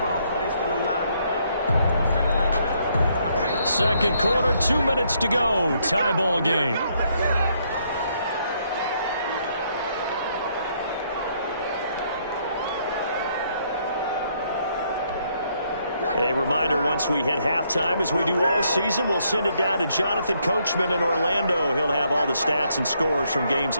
3. Second quarter, 2 minutes to go. Tie ball game. A reminder, once we hit halftime, as we do all season, we'll send it down to Jonathan Coachman in Orlando. He'll have all the stats and scores from games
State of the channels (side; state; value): both; inverted; correlation -0.72